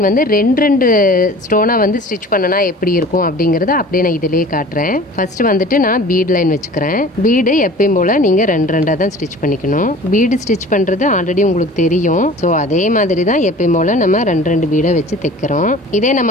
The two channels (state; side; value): normal; both; correlation 0.43